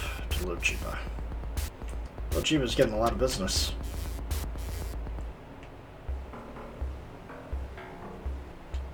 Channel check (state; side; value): identical; both; correlation 1.00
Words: to Luchiba. Luchiba's getting a lot of business.